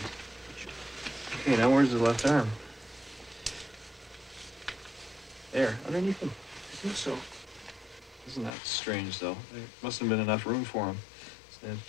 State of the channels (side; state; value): right; drops out; at 8.5 s